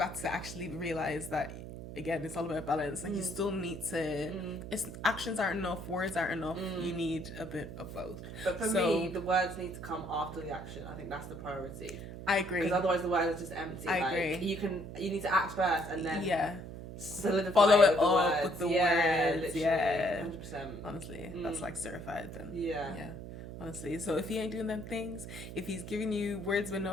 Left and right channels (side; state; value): right; noise; hum, 10 dB below the sound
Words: to actually realize that, again, it's all about balance. Like, you still need to, actions aren't enough, words aren't enough. You need a bit of both. But for me, the words need to come after the action. I think that's the priority. I agree. Because otherwise the words are just empty. I agree. You need to act first and then solidify follow it up words. with the words. Literally, 100%. Honestly, that's like certified then. Yeah. Honestly, so if he ain't doing them things, if he's giving you words with